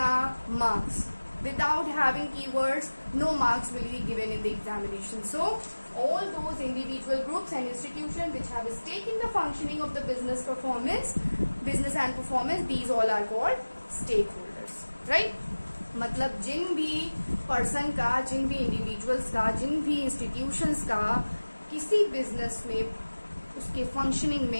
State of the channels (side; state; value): both; inverted; correlation -1.00